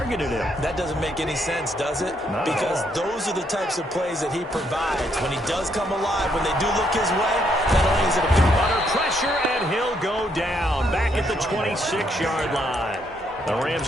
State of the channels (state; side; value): normal; both; correlation 0.73